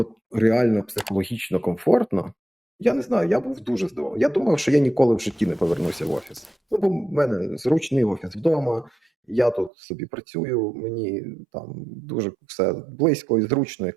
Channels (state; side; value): drops out; left; at 9.7 s